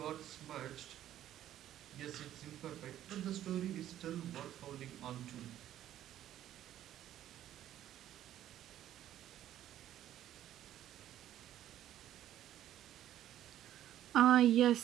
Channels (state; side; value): quieter; left; 12.1 dB